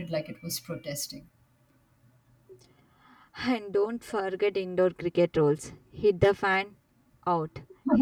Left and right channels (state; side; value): identical; both; correlation 1.00